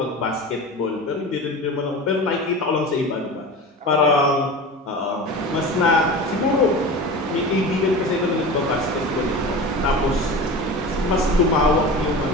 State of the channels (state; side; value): normal; both; correlation 0.31